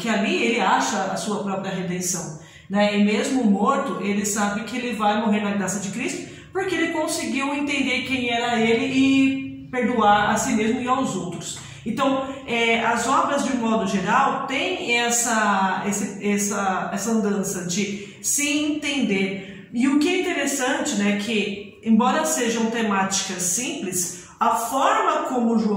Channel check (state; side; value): identical; both; correlation 1.00